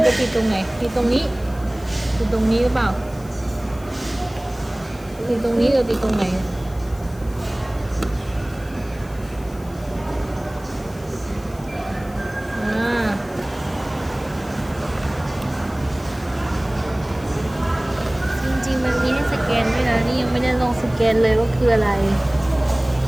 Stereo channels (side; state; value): left; noise; hiss, 23 dB below the sound